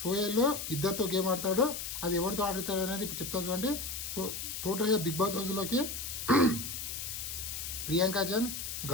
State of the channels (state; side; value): noise; left; hiss, 5 dB below the sound